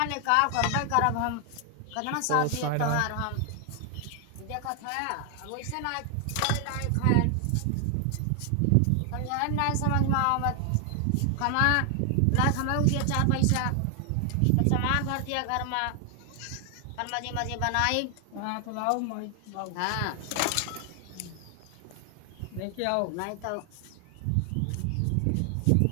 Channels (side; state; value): both; different; correlation 0.00